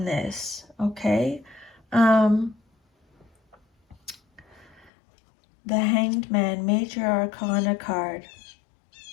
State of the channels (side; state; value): right; drops out; at 4.9 s